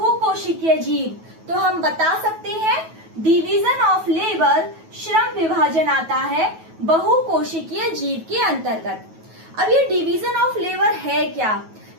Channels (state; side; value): late; left; 9.3 ms